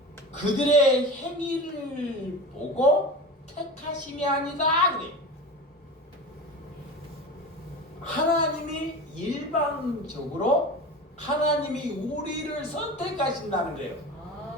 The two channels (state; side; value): normal; both; correlation 0.31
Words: 그들의 행위를 보고 택하심이 아니다. 그래. 하나님이 일방적으로 하나님이 우리를 선택하신다는 거예요.